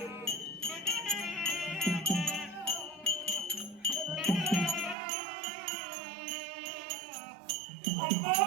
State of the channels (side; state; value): left; drops out; at 5.0 s